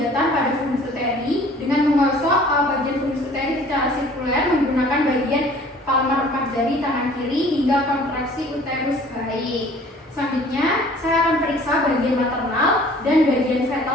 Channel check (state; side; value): normal; both; correlation 0.51